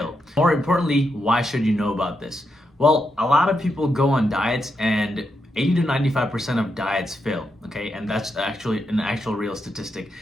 More importantly, why should you know about this? Well, a lot of people go on diets and 80 to 95% of diets fail, okay? And that's actually an actual real statistic.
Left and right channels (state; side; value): normal; both; correlation 0.83